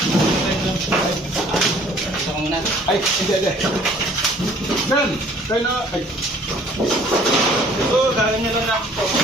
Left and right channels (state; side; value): normal; both; correlation 0.55